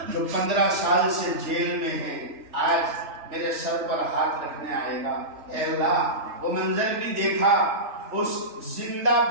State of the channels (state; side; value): late; left; 3.4 ms